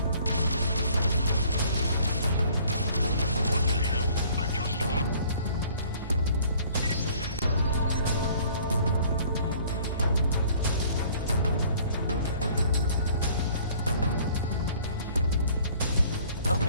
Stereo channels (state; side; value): inverted; both; correlation -0.55